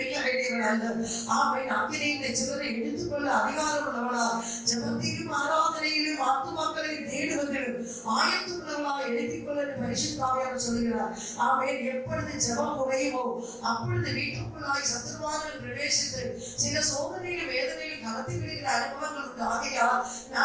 வேண்டியவள் அல்ல. ஆமென் அக்கினியின் சிலரை எடுத்துக்கொள்ள அதிகாரம் உள்ளவளா ஜெபத்திலும் ஆராதனையிலும் ஆத்மாக்களை தேடுவதிலும் ஆயத்துள்ளவளா எழுதிக் கொள்ள பரிசுத்த ஆவியானவர் சொல்கிறார். ஆமென். எப்பொழுது ஜெபம் குறையுமோ அப்பொழுது வீட்டுக்குள்ளாய் சத்துருவார்கள் பிரவேசித்து சில சோதனையிலும் வேதனையிலும் கலத்தி விடுகிற அனுபவங்கள் உண்டு. ஆகையால்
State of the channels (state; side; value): identical; both; correlation 1.00